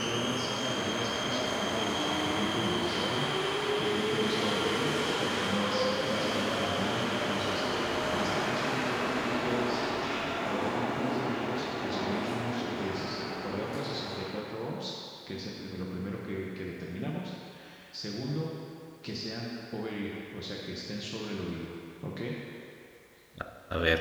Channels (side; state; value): both; identical; correlation 1.00